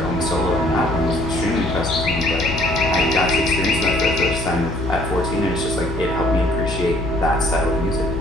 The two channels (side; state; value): left; noise; hum, 6 dB below the sound